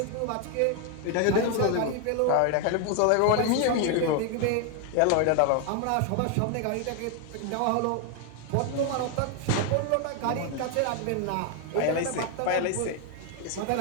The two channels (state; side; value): different; both; correlation 0.00